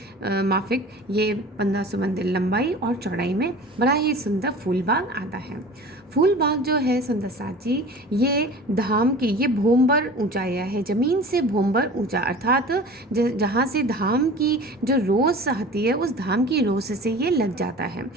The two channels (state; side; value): normal; both; correlation 0.40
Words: माफिक ये 1500 मंदिर लंबाई और चौड़ाई में बड़ा ही सुंदर फूलबाग आता है। फूलबाग जो है सुंदर साथ जी, ये धाम की ये भोंबर ऊंचाइया है, ज़मीन से भोंबर ऊंचा, अर्थात जहाँ से धाम की जो रोस आती है उस धाम की रोस से ये लग जाता है।